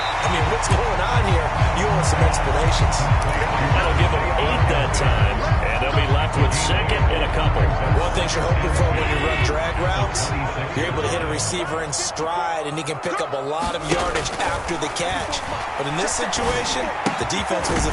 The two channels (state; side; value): identical; both; correlation 1.00